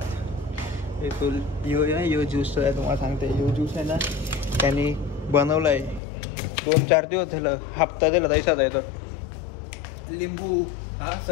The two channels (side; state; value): right; drops out; at 6.0 s